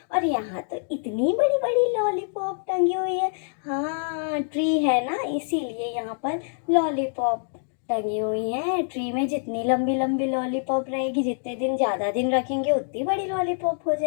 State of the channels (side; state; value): right; silent; digital silence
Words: और यहाँ तो इतनी बड़ी बड़ी लॉलीपॉप टंगी हुई है। हाँ, ट्री है ना, इसीलिए यहाँ पर लॉलीपॉप टंगी हुई है। ट्री में जितनी लंबी लंबी लॉलीपॉप रहेगी, जितने दिन ज़्यादा दिन रखेंगे उतनी बड़ी लॉलीपॉप हो